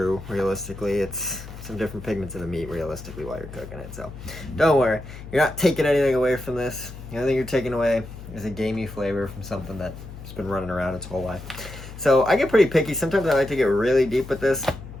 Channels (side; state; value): left; noise; hum, 13 dB below the sound